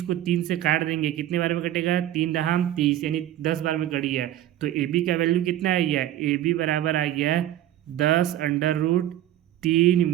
को 3 से काट देंगे, कितने बार में कटेगा, 3 दहाम 30, यानी 10 बार में कट गया। तो ए बी का वैल्यू कितना आ गया, ए बी बराबर आ गया 10/√3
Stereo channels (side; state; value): left; quieter; 12.8 dB